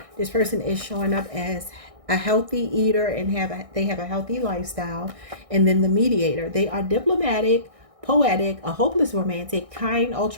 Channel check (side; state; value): left; late; 1.6 ms